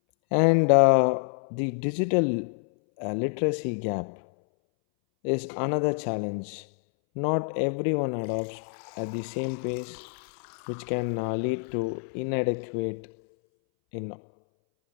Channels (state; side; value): silent; right; 60 dB below the other